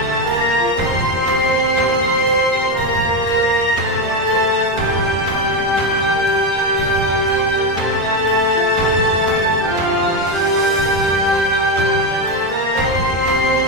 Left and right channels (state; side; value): normal; both; correlation 0.11